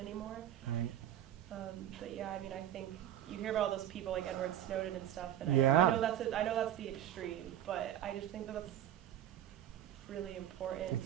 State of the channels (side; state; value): left; quieter; 11.5 dB